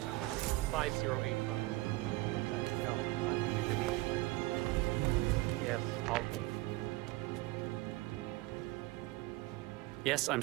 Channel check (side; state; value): left; quieter; 20.3 dB